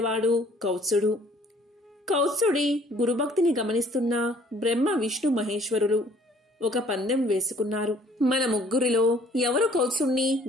కౌత్సుడు. కౌత్సుడి గురుభక్తిని గమనిస్తున్న బ్రహ్మ, విష్ణు, మహేశ్వరులు ఒక పందెం వేసుకున్నారు. మన ముగ్గురిలో ఎవరు కౌత్సుణ్ణి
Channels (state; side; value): normal; both; correlation 0.58